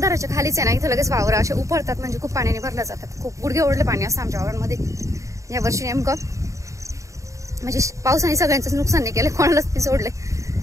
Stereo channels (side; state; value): left; late; 0.15 ms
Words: खालीच आहे ना, इथं लगेच वावर असे उपळतात. म्हणजे खूप पाण्याने भरल्या जातात. खूप गुडघे ओढले पाणी असतं आमच्या वावरांमध्ये. या वर्षी नेमकं म्हणजे पावसाने सगळ्यांचंच नुकसान नाही केलं, कोणालाच नाही सोडले.